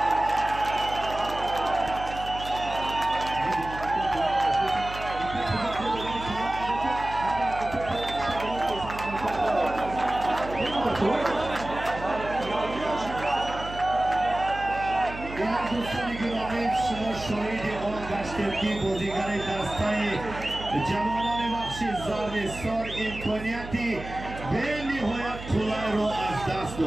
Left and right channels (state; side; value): noise; right; hum, 11 dB below the sound